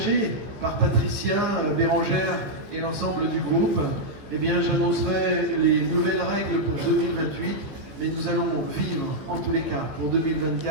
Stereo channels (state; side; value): late; left; 15 ms